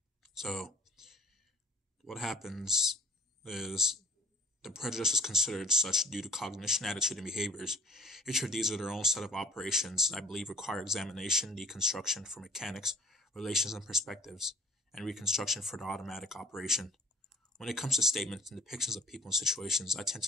So what happens is the prejudice is considered such due to cognition, attitude, and behaviors. Each of these are their own set of operations and I believe require examination, deconstruction for mechanics, relations and perspectives, and reconstruction for the automatic operation. When it comes to statements and depictions of people and situations, I tend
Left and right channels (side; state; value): both; normal; correlation 0.53